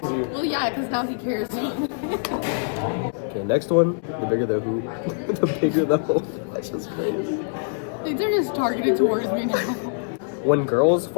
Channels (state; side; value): silent; right; digital silence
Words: yeah, because now he cares. Okay, next one. The bigger the who, the bigger the hole. That's just crazy. These are just targeted towards me now. When girls